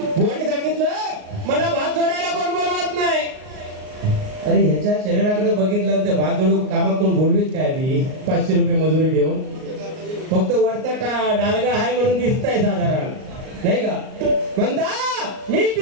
बुवांनी सांगितलं मला भात जोडायला कोण बोलवत नाही. अरे ह्याच्या शरीराकडे बघितलं तर भात जोडू कामात कोण बोलवीत काय ती 500 रुपये मजुरी देऊन. फक्त वरचा डालगा आहे म्हणून दिसताय साधारण नाही का. म्हणता मी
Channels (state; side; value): late; left; 38 ms